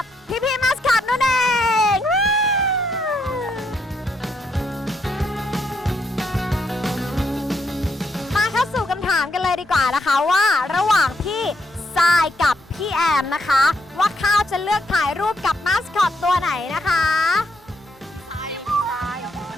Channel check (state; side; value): normal; both; correlation 0.77